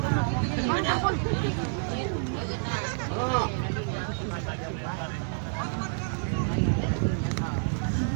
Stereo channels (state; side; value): silent; left; 59 dB below the other